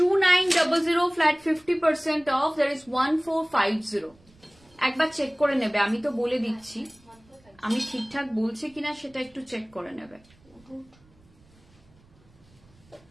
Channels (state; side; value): noise; right; rumble, 29 dB below the sound